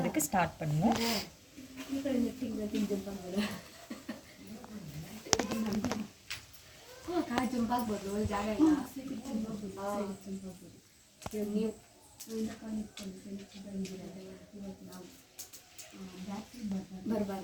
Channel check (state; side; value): identical; both; correlation 1.00